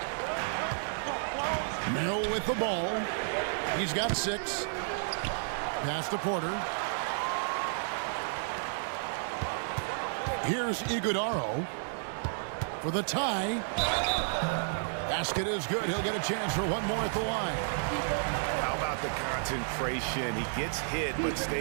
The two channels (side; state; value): left; silent; 57 dB below the other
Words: Merrill with the ball. He's got 6. Pass to Porter. Here's Iguodaro for the tie. Basket is good. He'll get a chance for one more at the line. How about the concentration? He gets hit but